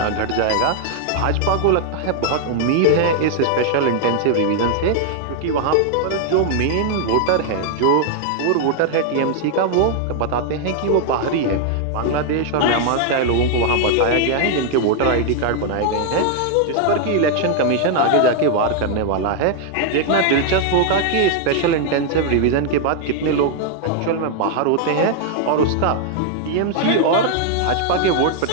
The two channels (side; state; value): both; different; correlation 0.00